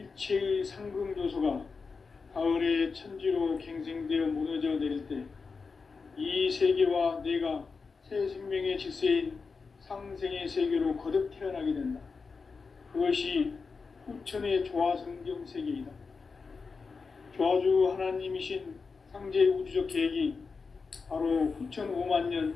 상금 요소가 가을의 천지로 갱생되어 무너져 내릴 때 이 세계와 내가 새 생명의 질서인 상생의 세계로 거듭 태어나게 된다. 그것이 후천의 조화성경 세계이다. 조화주 하나님이신 상제 우주적 계획이 바로 후천 5만년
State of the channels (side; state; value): right; quieter; 4.8 dB